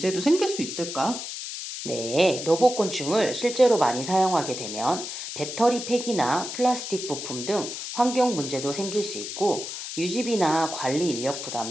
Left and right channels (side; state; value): left; noise; hiss, 7 dB below the sound